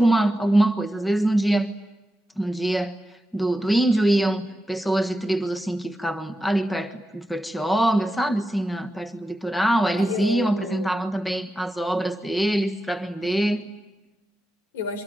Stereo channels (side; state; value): both; normal; correlation 0.91